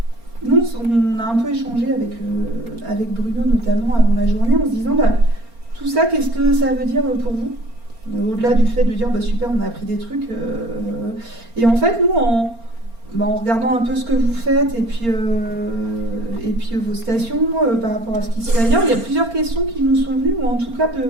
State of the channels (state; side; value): late; left; 4.3 ms